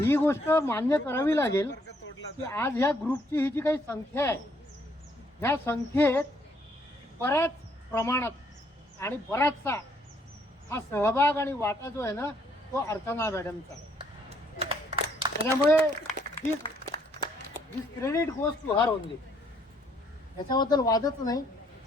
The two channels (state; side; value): normal; both; correlation 0.68